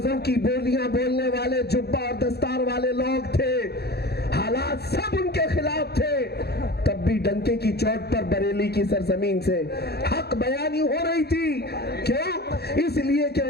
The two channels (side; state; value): right; late; 0.47 ms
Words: کی بولیاں بولنے والے جبہ اور دستار والے لوگ تھے, حالات سب ان کے خلاف تھے. تب بھی ڈنکے کی چوٹ پر بریلی کی سرزمین سے حق بیانی ہو رہی تھی. کیوں؟ اس لیے کہ